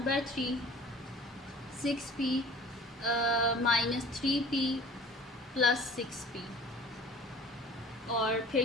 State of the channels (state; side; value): normal; both; correlation 0.46